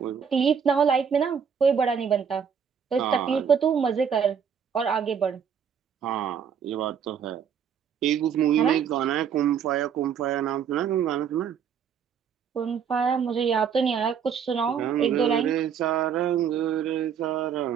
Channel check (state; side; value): quieter; left; 7.5 dB